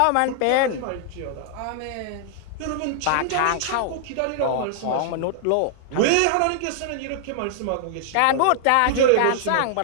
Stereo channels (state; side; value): different; both; correlation -0.01